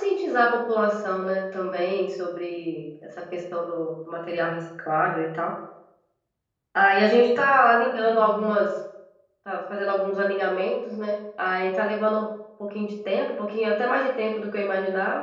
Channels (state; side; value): identical; both; correlation 1.00